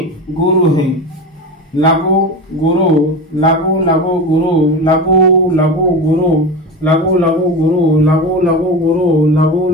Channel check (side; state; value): both; normal; correlation 0.25